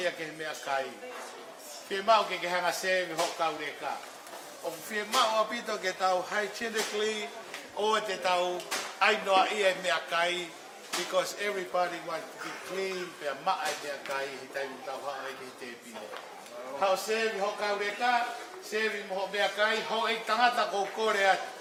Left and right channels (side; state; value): both; identical; correlation 1.00